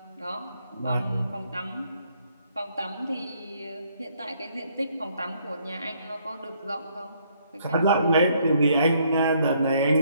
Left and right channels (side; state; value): both; inverted; correlation -0.68